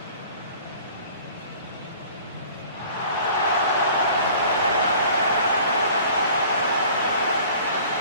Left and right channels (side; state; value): both; inverted; correlation -0.48